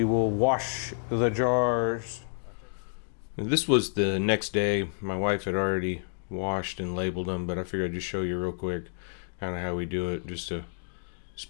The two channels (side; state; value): right; silent; 57 dB below the other